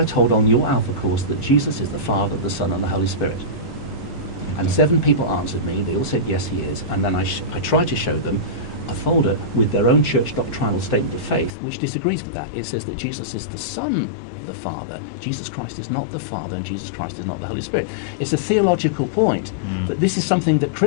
told on your Alpha course that Jesus is the Father, the Son, and the Holy Spirit? And 7 people answered me. They all said, yes, he is. And then I tried to show them a folder with their own church doctrinal statement of faith, which disagrees with that. It says that Jesus is the Son of the Father. Jesus Christ is not the Father, and Jesus Christ is not the Holy Spirit. It's a theological point that this is something that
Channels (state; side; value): drops out; right; at 11.5 s